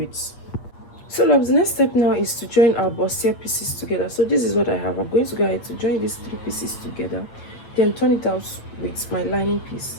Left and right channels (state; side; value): late; right; 8.3 ms